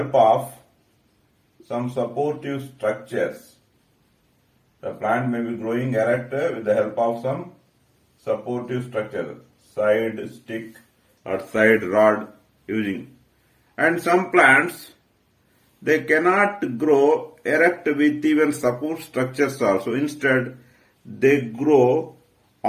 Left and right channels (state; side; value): identical; both; correlation 1.00